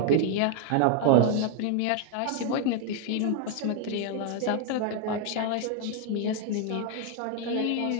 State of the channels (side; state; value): both; different; correlation 0.01